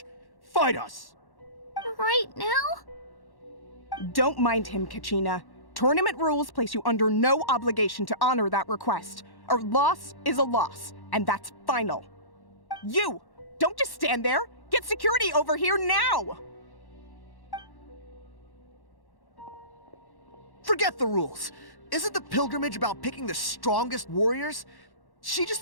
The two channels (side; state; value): right; late; 1.1 ms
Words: Fight us! Right now? Don't mind him, Kachina. Tournament rules place you under no obligation to honor that request. A loss is a loss, and that's final. You! Don't just stand there! Get security over here now! Forget the rules. Isn't the pilgrimage about picking the strongest warriors? She just